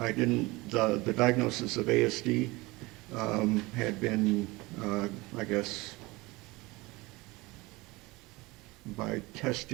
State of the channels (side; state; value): left; quieter; 22.4 dB